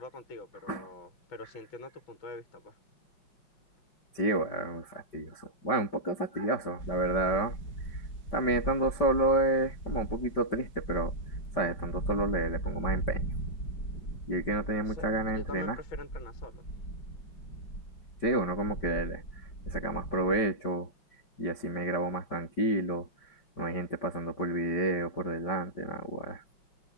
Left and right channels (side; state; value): right; late; 5.2 ms